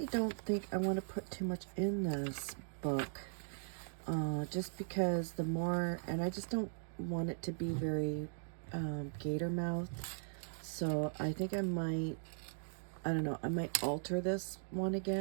don't think I want to put too much in this book, just because the more, and I just don't want it to be very gator mouth. So I think I might, I don't know, I might alter this one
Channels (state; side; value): silent; left; digital silence